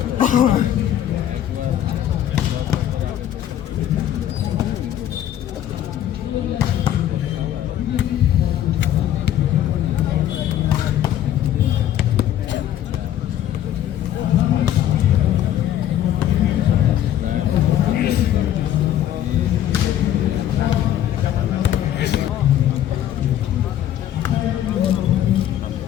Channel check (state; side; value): quieter; right; 11.5 dB